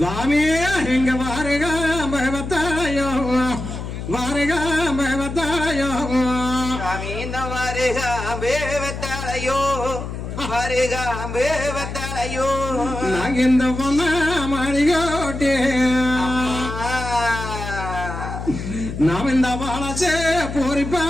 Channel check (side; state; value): left; noise; hum, 7 dB below the sound